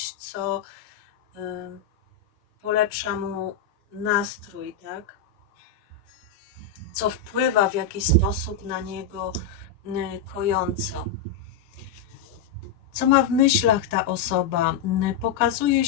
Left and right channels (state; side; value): quieter; right; 6.1 dB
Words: co polepsza mu nastrój, tak? Co wpływa w jakiś sposób na niego kojąco. Co ma w myślach ta osoba? Pokazuje